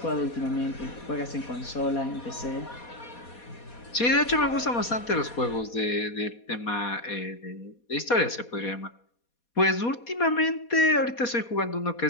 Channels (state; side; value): late; right; 4.2 ms